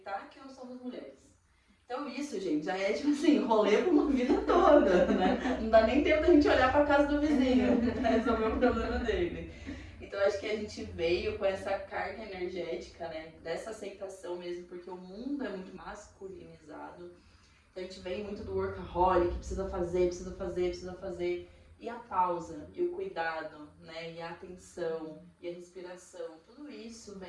que nós somos mulheres. Então isso, gente, já é tipo assim, rolê por uma vida toda, né? Não dá nem tempo da gente olhar pra casa do vizinho pra resolver o problema dele. Então acho que a gente veio com essa carga energética, né? Dessa aceitação mesmo, porque o mundo é muito masculinizado. Então a gente vem muito do workaholic, precisa fazer. E a pausa, e o cuidado, né? E a atenção, e a respiração. Tudo isso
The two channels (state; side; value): identical; both; correlation 1.00